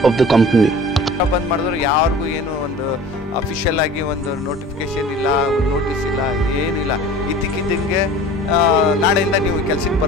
of the company. ಬಂದ್ ಮಾಡಿದ್ರು ಯಾರಿಗೂ ಏನು ಒಂದು ಅಫಿಷಿಯಲ್ ಆಗಿ ಒಂದು ನೋಟಿಫಿಕೇಶನ್ ಇಲ್ಲ, ಒಂದು ನೋಟಿಸ್ ಇಲ್ಲ, ಏನಿಲ್ಲ. ಇದ್ದಕ್ಕಿದ್ದಂಗೆ ನಾಳೆಯಿಂದ ನೀವು ಕೆಲಸಕ್ಕೆ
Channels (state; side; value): normal; both; correlation 0.42